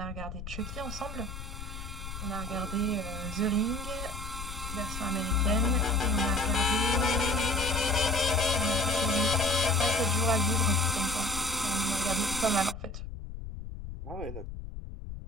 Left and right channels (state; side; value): noise; left; rumble, 9 dB below the sound